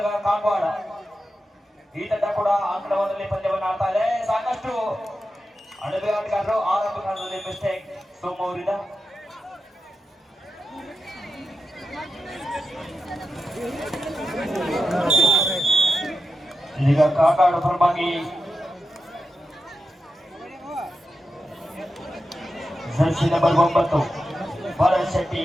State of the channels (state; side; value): normal; both; correlation 0.90